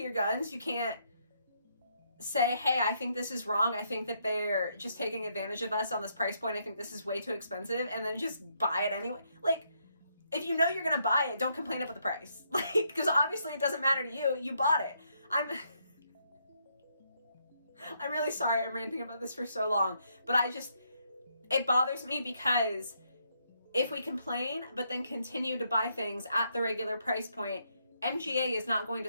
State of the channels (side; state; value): both; inverted; correlation -0.75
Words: guns. You can't say, hey, I think this is wrong. I think that they're just taking advantage of us on this price point. I think this is way too expensive, and then just buy it anyway. Like, if you know you're gonna buy it, don't complain about the price. Like, because obviously it doesn't matter to you. You bought it. I'm really sorry I'm ranting about this for so long, but it bothers me because if we complain but then continue to buy things at the regular price point, MGA is not going